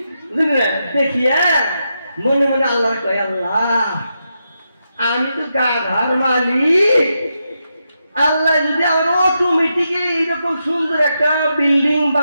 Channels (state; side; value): inverted; both; correlation -0.85